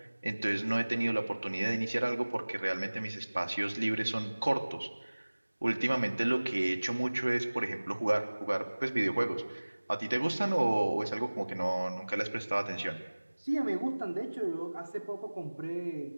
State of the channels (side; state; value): both; inverted; correlation -1.00